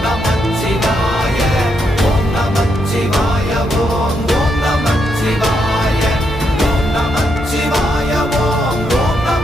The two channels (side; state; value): both; normal; correlation 0.79